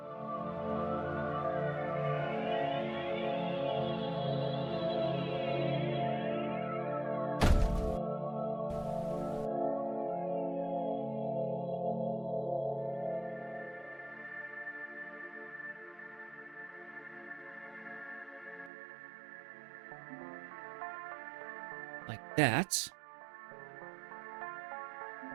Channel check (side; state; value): left; drops out; at 18.7 s